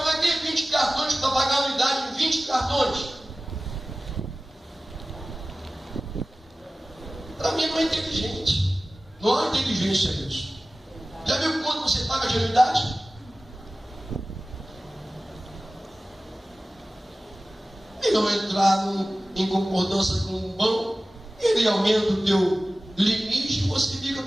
vai ter 20 cartões para pagar a anuidade de 20 cartões. Para mim não é inteligente. Não há inteligência nisso. Já viu quanto você paga de anuidade? E não entrar em concordância com um banco, ele aumenta o teu limite e você fica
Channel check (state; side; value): normal; both; correlation 0.97